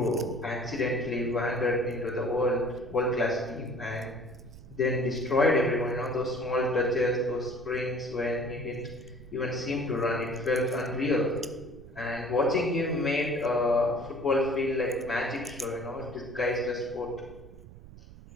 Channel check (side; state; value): right; noise; rumble, 17 dB below the sound